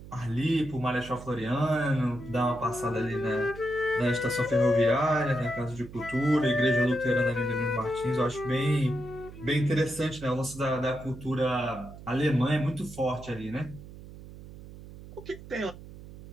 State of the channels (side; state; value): right; noise; hum, 16 dB below the sound